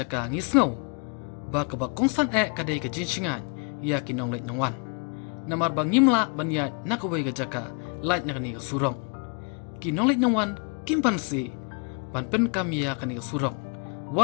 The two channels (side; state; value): right; quieter; 37.3 dB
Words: ngisngau ba ka ba kongsan kadai ka jinsingan ya kinong leit nawan. Namar bang ngimla banya nakawai ka jaka lait nak ni ka surong. Kinong leit nawan kimpan si ban pen kam ya ka ni ka surong.